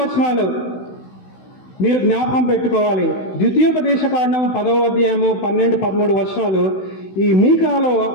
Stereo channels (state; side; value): late; right; 16 ms